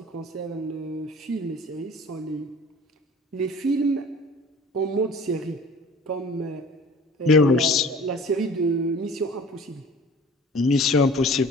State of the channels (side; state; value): both; normal; correlation 0.45